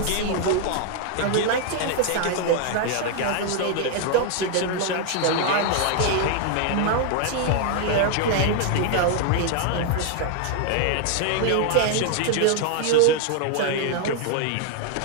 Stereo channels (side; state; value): both; different; correlation 0.00